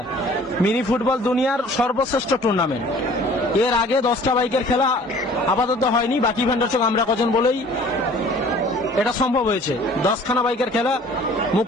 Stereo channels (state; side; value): normal; both; correlation 0.51